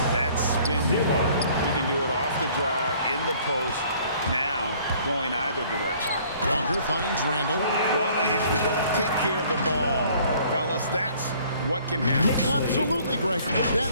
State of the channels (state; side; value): inverted; both; correlation -0.57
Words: That spin move. He can do it off the drive, in the post, now going either direction. Walker finds Randall. Well, if you don't take care of the ball, fellas, that's what can happen. Absolutely, Greg.